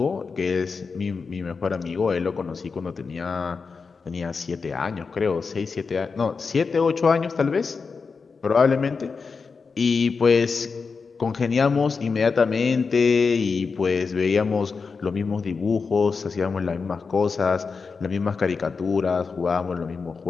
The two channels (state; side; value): quieter; right; 4.9 dB